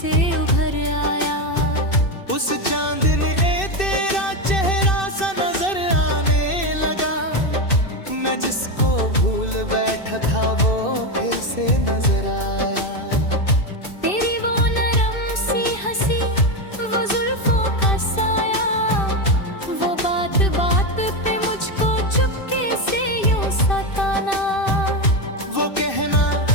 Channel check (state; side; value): late; right; 2.6 ms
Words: उभर आया। उस चांद ने तेरा चेहरा सा नजर आने लगा। मैं जिसको भूल बैठा था वो फिर से नजर आया। तेरी वो नरम सी हंसी, वो जुल्फों का साया, वो बात बात पे मुझको चुपके से यूं सताना। वो कहना